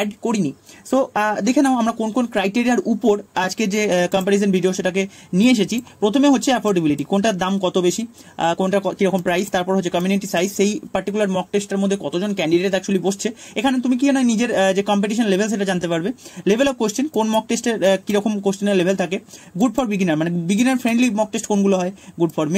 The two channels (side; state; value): both; identical; correlation 1.00